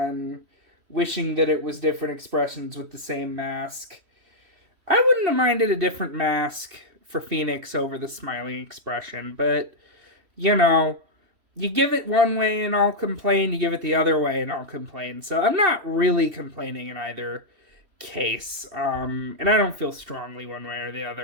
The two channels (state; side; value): late; left; 3.1 ms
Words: wishing that it was different expressions with the same mask, I wouldn't have minded a different mask for Phoenix over the smiling expression, but, you give it one way and I'll complain, you give it the other way and I'll complain. So I'm not really complaining in either case. And I don't feel strongly one way or the